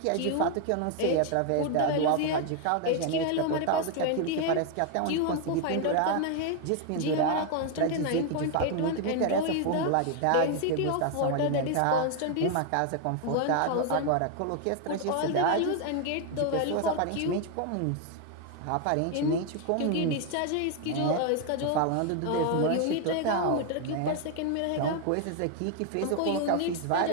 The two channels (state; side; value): different; both; correlation 0.01